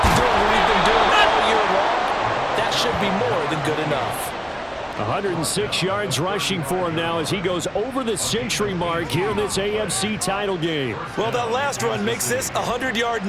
doing what we've been doing all year long. That should be more than good enough. 106 yards rushing for him now as he goes over the century mark here in this AFC title game. Well, that last run makes this a 100-yard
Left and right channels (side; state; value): both; identical; correlation 1.00